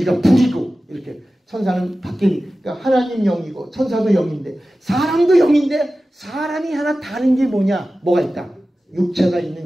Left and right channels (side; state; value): both; normal; correlation 0.95